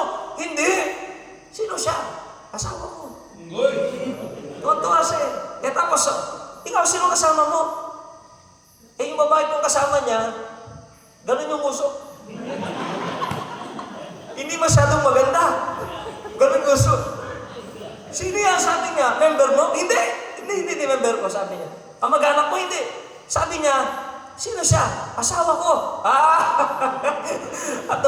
Hindi. Sino siya? Asawa mo. Uy. Tuwa siya. Eh tapos, ikaw, sino kasama mo? Eh yung babae kong kasama niya, ganun yung usok. Hindi masyadong maganda. Ganun yung usok. Sino yan? Sabi niya, member mo? Hindi member ko, sabi niya. Kamag-anak mo? Hindi. Sabi niya, sino siya? Asawa ko. At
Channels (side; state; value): both; identical; correlation 1.00